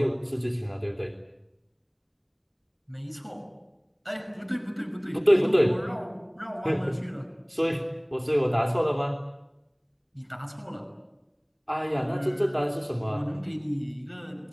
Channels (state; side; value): identical; both; correlation 1.00